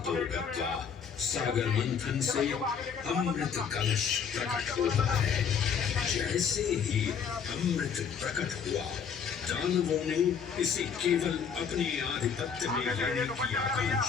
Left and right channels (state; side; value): quieter; right; 6.8 dB